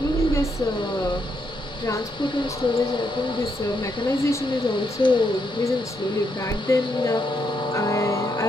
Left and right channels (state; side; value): normal; both; correlation 0.78